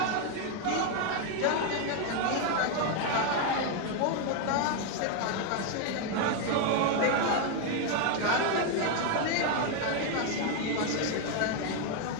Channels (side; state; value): both; different; correlation 0.01